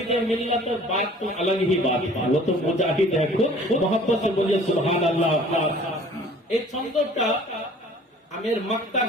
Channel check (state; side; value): normal; both; correlation 0.50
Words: मिल्लत बात तो अलग ही बात है, वो तो मुजाहिद है खुद। मोहब्बत से बोलिए सुभान अल्लाह। এই ছন্দটা আমি এর মাক্তার